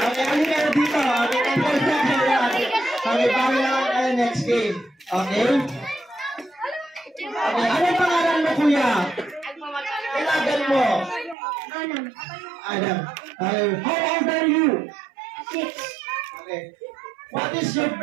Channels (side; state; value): left; drops out; at 11.4 s